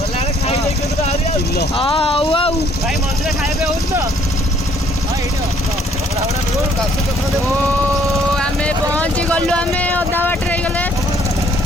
ହଉ ଆଉ ଆମେ ପହଞ୍ଚି ଗଲୁ ଆମେ ଅଧା ବାଟରେ ହେଇଗଲେ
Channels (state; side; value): normal; both; correlation 0.63